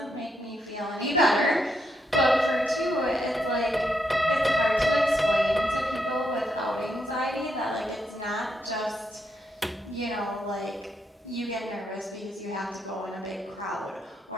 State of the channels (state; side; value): normal; both; correlation 0.80